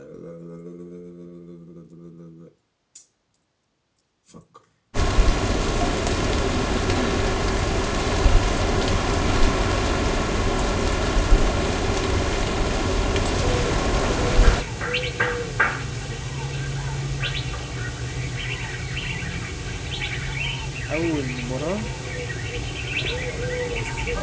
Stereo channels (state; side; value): identical; both; correlation 1.00